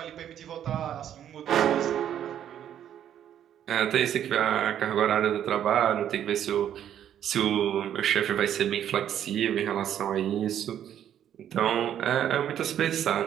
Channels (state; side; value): quieter; left; 10.2 dB